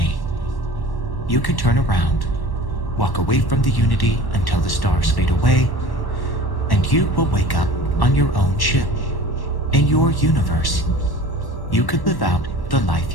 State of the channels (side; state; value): right; late; 1.1 ms